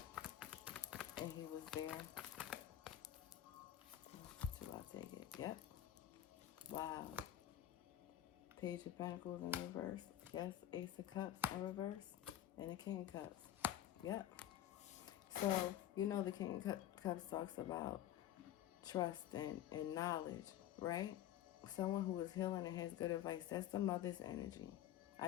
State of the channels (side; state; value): right; quieter; 11.9 dB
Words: and he was there? So I'll take it. Yep. Wow. Page of Pentacles in reverse. Yes, Ace of Cups in reverse. And the King of Cups. Yep. So, you know the King of Cups talks about trust and knowledge, right? Someone who is healing and has good advice. That's the mother's energy. I